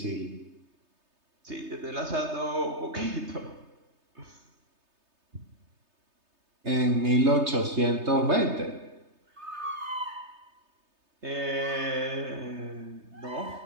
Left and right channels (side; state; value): left; late; 3.3 ms